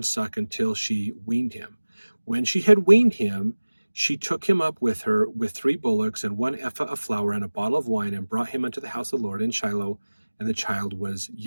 suck until she weaned him. When she had weaned him, she took him up with her with 3 bullocks and 1 ephah of flour and a bottle of wine, and brought him unto the house of the Lord in Shiloh, and the child was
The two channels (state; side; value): inverted; both; correlation -1.00